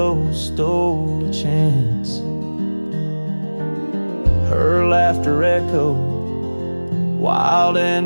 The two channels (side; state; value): both; inverted; correlation -1.00